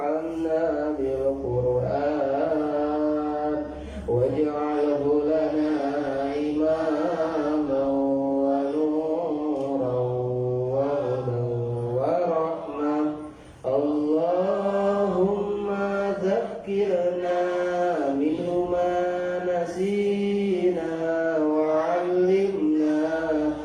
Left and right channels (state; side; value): identical; both; correlation 1.00